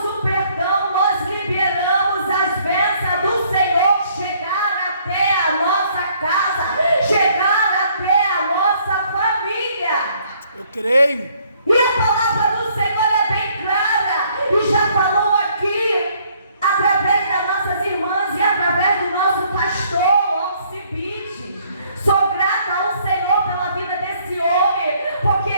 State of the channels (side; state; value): both; inverted; correlation -0.64